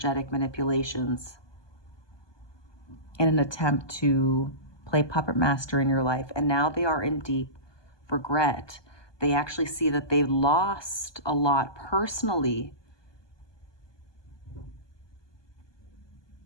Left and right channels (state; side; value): late; right; 1.2 ms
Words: manipulations in an attempt to play puppet master in your life. And now they are in deep regret. They actually see that they lost a lot personally